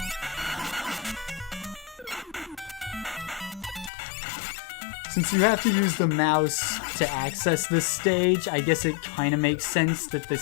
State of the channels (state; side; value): drops out; right; at 3.9 s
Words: Since you have to use the mouse to access this stage, I guess it kind of makes sense that the